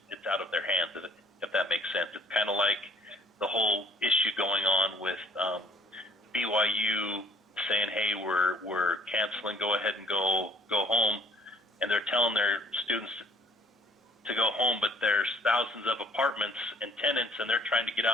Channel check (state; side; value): normal; both; correlation 0.58